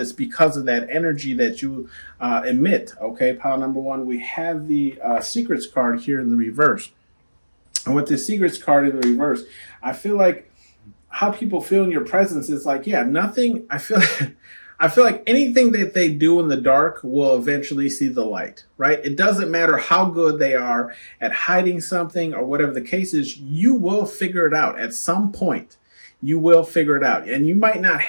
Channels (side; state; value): both; inverted; correlation -1.00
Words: because of that energy that you emit. Okay, pile number one, we have the secrets card here in the reverse. And with the secrets card in the reverse, I feel like how people feel in your presence is like, yeah, nothing. I feel like anything that they do in the dark will eventually see the light, right? It doesn't matter how good they are at hiding something or whatever the case is, you will figure it out at some point. You will figure it out. And you might not